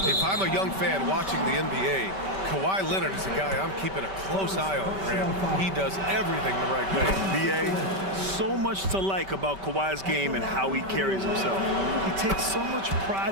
If I'm a young fan watching the NBA, Kawhi Leonard is a guy I'm keeping a close eye on, Graham. He does everything the right way. BA, so much to like about Kawhi's game and how he carries himself. He takes so much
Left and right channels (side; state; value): left; late; 5.2 ms